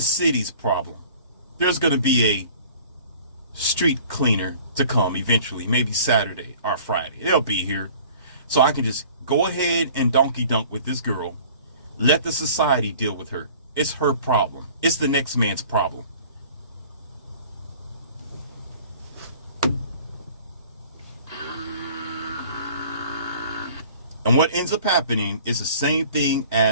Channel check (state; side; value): inverted; both; correlation -0.48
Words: problem. There's going to be a street cleaner to come eventually, maybe Saturday or Friday. They'll be here. So I can just go ahead and donkey dunk with this girl. Let the society deal with her. It's her problem. It's the next man's problem. And what ends up happening is the same thing